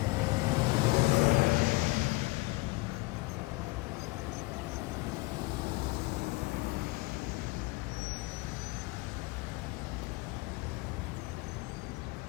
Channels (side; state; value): right; quieter; 23.6 dB